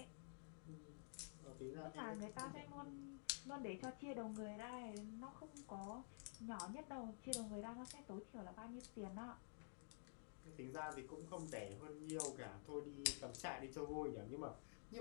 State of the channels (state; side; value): silent; right; digital silence